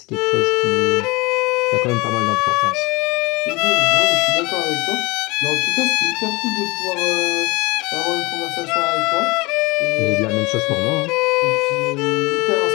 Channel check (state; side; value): quieter; right; 24.0 dB